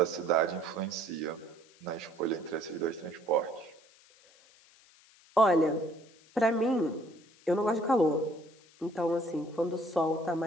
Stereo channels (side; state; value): left; noise; hiss, 28 dB below the sound